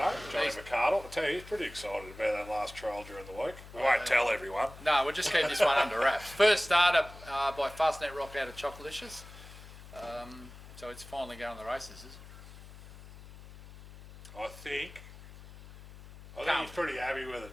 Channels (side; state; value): left; noise; hum, 17 dB below the sound